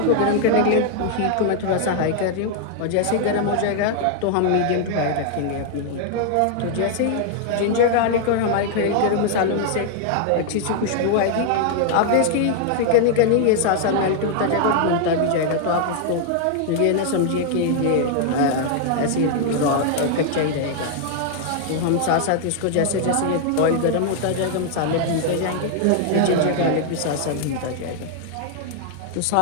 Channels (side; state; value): both; different; correlation -0.01